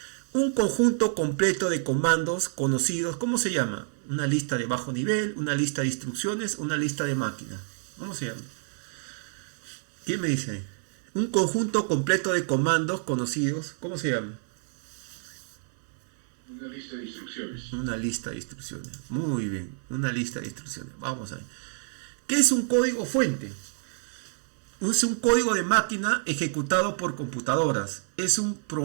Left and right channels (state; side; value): silent; left; 59 dB below the other